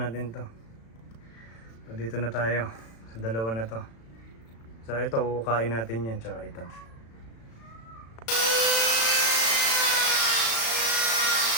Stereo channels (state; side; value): late; right; 35 ms